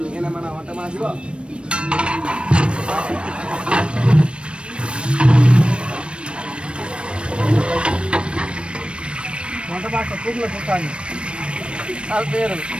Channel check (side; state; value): left; late; 0.058 ms